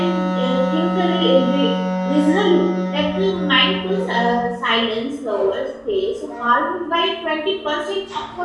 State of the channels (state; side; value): identical; both; correlation 1.00